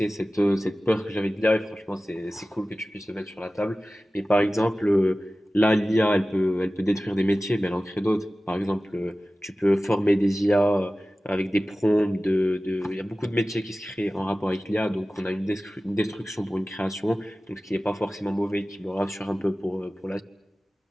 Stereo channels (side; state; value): both; normal; correlation 0.96